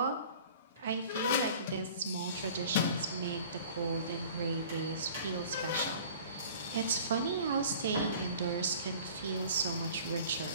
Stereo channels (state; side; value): inverted; both; correlation -0.45